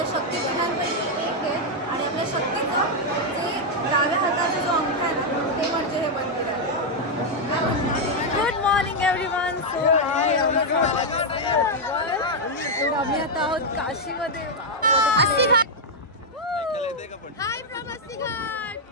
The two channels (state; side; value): normal; both; correlation -0.01